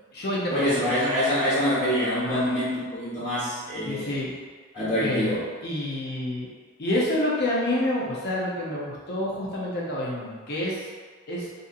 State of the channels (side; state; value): both; normal; correlation 0.29